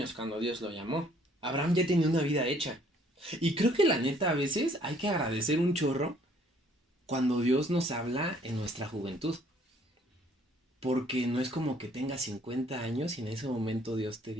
cuando Dios lo llamó. Abraham ya tenía una vida hecha. Y creo que la neta a veces hay que agradecer un chorro cuando Dios nos habla en nuestra juventud. Porque no es como que tengas 50 años y en ese momento Dios te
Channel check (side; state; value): both; normal; correlation 0.61